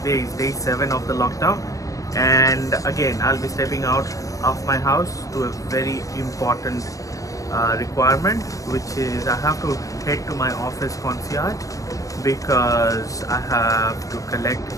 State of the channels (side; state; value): right; late; 0.16 ms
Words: is day 7 of the lockdown and again I'll be stepping out of my house to a very important requirement, which is I have to head to my office concierge because I have to collect